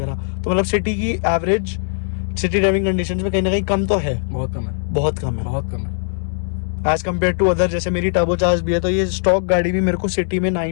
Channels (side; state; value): right; silent; digital silence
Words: तो मतलब सिटी की एवरेज सिटी ड्राइविंग कंडीशंस में कहीं ना कहीं कम तो है, बहुत कम है, बहुत कम है, बहुत कम है एज कम्पेयर टू अदर। जैसे मेरी टर्बो चार्ज भी है, तो ये स्टॉक गाड़ी भी मेरे को सिटी में